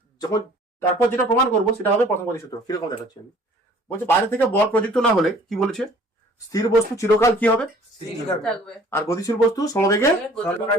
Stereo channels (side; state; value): both; normal; correlation 0.53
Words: যখন তারপর যেটা প্রমাণ করবো সেটা হবে প্রথম গতিসূত্র। কিরকম দেখাচ্ছি আমি, বলছে বাইরে থেকে বল প্রযুক্ত না হলে কি বলেছে, স্থির বস্তু চিরকাল কি হবে, থাকবে আর গতিশীল বস্তু সমবেগে।